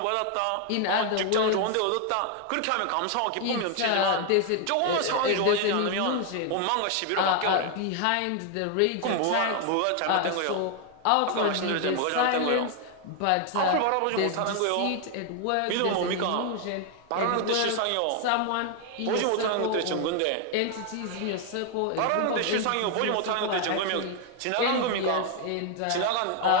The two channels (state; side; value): different; both; correlation 0.00